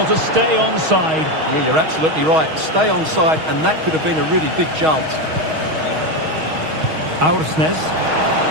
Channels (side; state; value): left; late; 6.3 ms